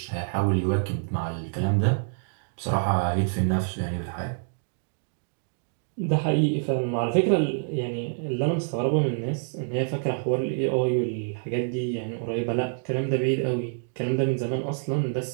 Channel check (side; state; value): left; silent; digital silence